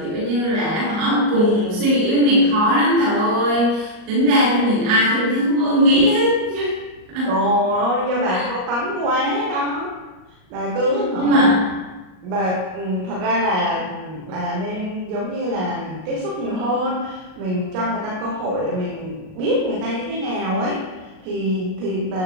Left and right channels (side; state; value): left; late; 38 ms